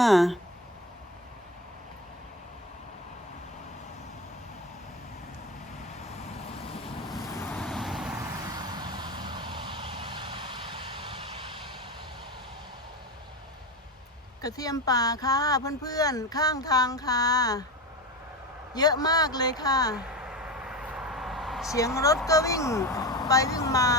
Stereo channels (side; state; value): both; normal; correlation 0.23